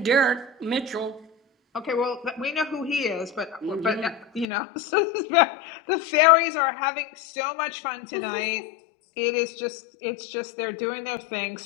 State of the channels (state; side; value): drops out; right; at 4.5 s